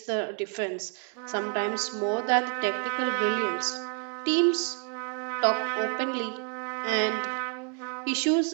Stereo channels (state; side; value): quieter; left; 37.9 dB